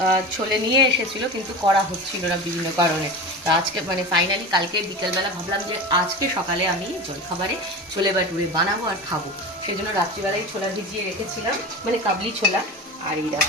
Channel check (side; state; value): both; normal; correlation 0.28